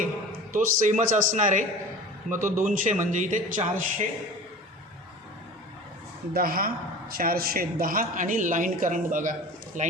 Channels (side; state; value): both; normal; correlation 0.38